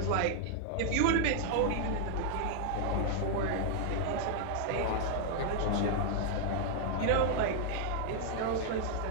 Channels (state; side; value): different; both; correlation -0.01